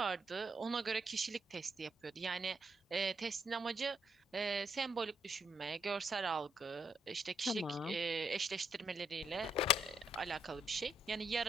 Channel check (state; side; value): normal; both; correlation 0.75